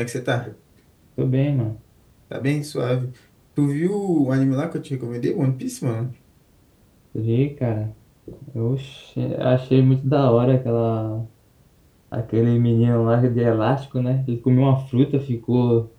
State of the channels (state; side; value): identical; both; correlation 1.00